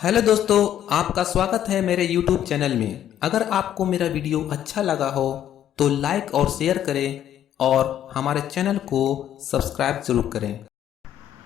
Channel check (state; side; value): quieter; right; 10.9 dB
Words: Hello दोस्तों, आपका स्वागत है मेरे YouTube चैनल में। अगर आपको मेरा वीडियो अच्छा लगा हो तो लाइक और शेयर करें और हमारे चैनल को सब्सक्राइब जरूर करें।